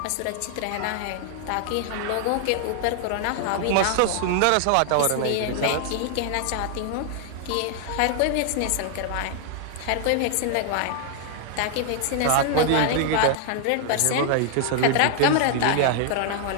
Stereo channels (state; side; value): different; both; correlation 0.00